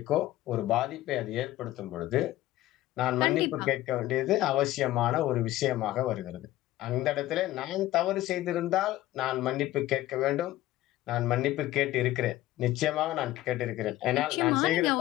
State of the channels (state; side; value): quieter; right; 15.5 dB